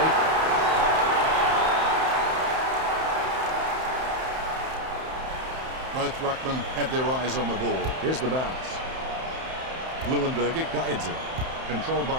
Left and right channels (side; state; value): left; late; 31 ms